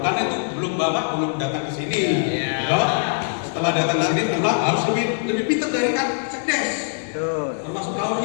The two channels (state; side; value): silent; right; 64 dB below the other